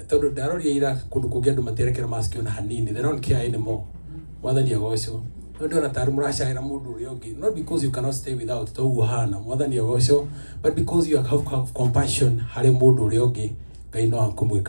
tondu ndaroria ira kundu kungi andu materekera mask ona hanini, they don't care anymore. Mwathani agoco tondu ona tari muracaira mundu uria ungi, not because you cannot stay without to uhana mwathani agoco, but because you have compassion hari mundu uria ungi, Ngai no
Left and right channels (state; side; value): inverted; both; correlation -1.00